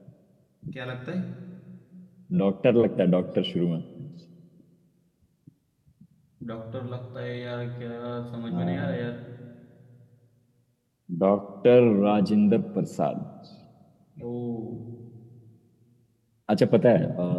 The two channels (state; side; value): identical; both; correlation 1.00